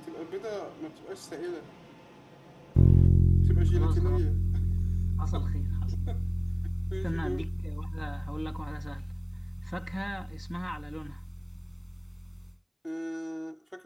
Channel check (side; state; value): both; identical; correlation 1.00